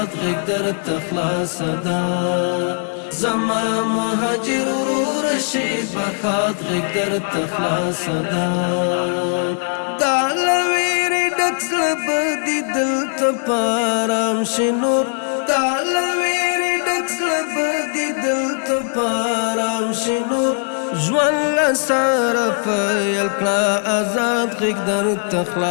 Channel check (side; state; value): right; silent; 63 dB below the other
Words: غږ درته خلاصه ده زما مهاجر ورور شي بخات غږ درته خلاصه ده دا لویری ډک زړه به دې دلته په ارام شي نور دا لویری ډک زړه به دې دلته په ارام شي نور ژوند له سره پیل کړه ازاد غږ درته